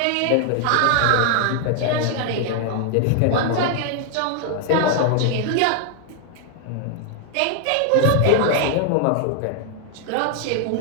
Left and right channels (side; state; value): both; different; correlation 0.00